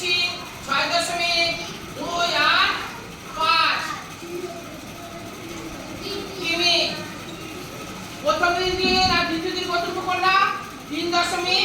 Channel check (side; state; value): both; identical; correlation 1.00